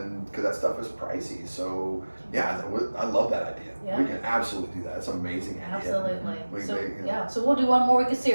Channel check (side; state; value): both; inverted; correlation -1.00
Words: because that stuff is pricey. So, yeah, I love that idea. Yeah. We can absolutely do that. It's an amazing idea. Absolutely. We So, make, you know, yeah, so we'll do one more week of